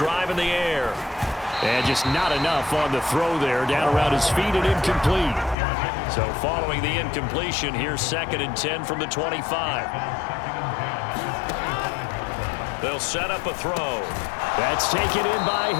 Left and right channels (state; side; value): drops out; right; at 5.6 s